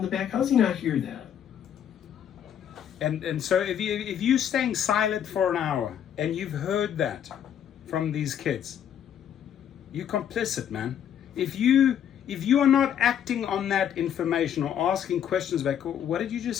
the back. How's he not hear that? And so if you're staying silent for an hour and you've heard that from these kids, you're complicit, man. If you are not acting on that information or asking questions back, what did you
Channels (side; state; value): right; quieter; 9.4 dB